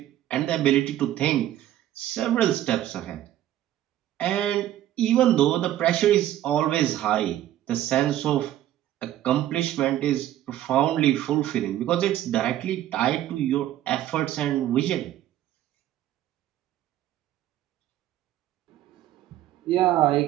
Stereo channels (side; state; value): left; quieter; 12.9 dB